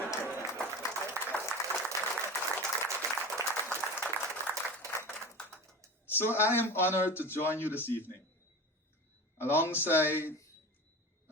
So I am honored to join you this evening alongside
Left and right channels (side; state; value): both; normal; correlation 0.31